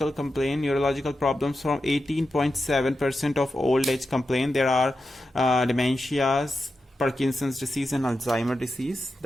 complaint, neurological problems from 18.7% of old age complaint. There are dementias, Parkinson's disease and Alzheimer disease.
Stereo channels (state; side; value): normal; both; correlation 0.90